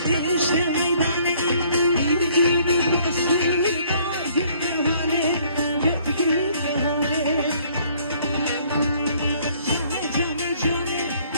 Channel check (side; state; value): both; inverted; correlation -0.61